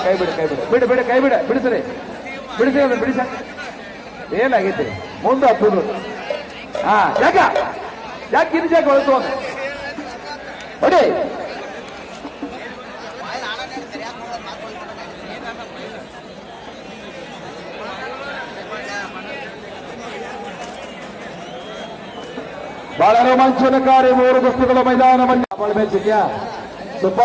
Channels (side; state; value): both; identical; correlation 1.00